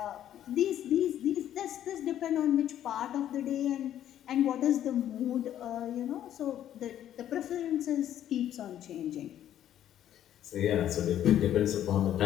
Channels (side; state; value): right; quieter; 11.2 dB